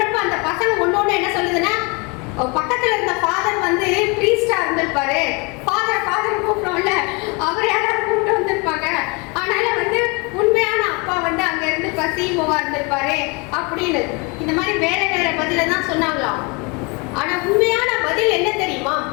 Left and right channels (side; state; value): right; quieter; 29.8 dB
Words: அந்த பசங்க ஒன்னொன்னு என்ன சொல்லுதுன்னா, பக்கத்துல இருந்த ஃபாதர் வந்து ப்ரீஸ்டா இருந்திருப்பாரு, ஃபாதர் கூப்பிட்டோம்ல அவர் யாராவது கூப்பிட்டு வந்திருப்பாங்க, அதனால வந்து உண்மையான அப்பா வந்து அங்க இருந்து சிஇஓவா இருந்திருப்பாரு அப்படின்னு இந்த மாதிரி வேற வேற பதில தான் சொன்னாங்களாம். ஆனா உண்மையான பதில் என்ன தெரியுமா,